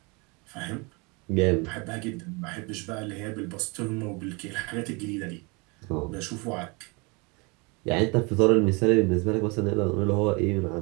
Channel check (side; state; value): left; quieter; 29.2 dB